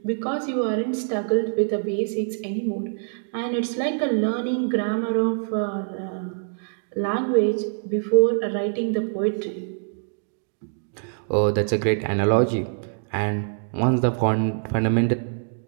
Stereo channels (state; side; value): silent; left; digital silence